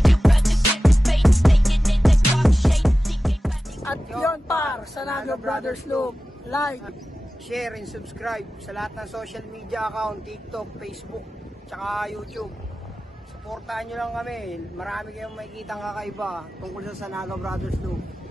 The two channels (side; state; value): both; normal; correlation 0.95